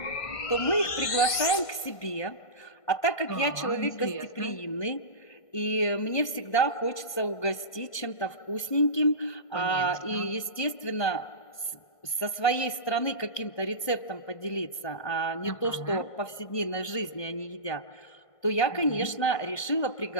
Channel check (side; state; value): right; late; 1.5 ms